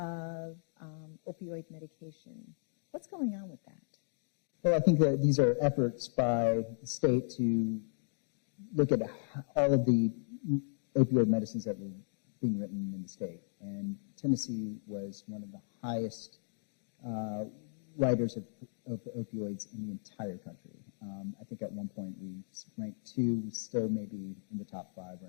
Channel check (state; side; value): silent; right; digital silence